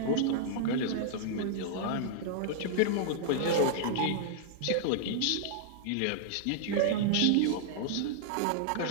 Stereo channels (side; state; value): both; different; correlation -0.01